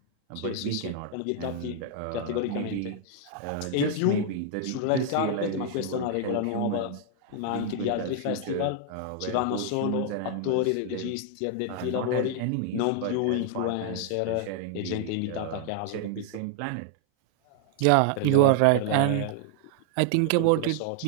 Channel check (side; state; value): both; different; correlation 0.00